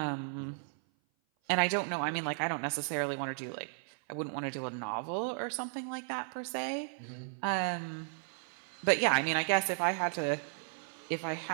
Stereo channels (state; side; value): silent; left; 55 dB below the other